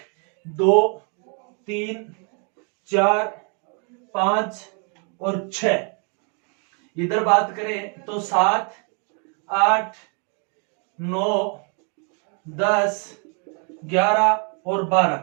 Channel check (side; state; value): left; quieter; 38.3 dB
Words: 2, 3, 4, 5 और 6। इधर बात करें तो 7, 8, 9, 10, 11 और 12।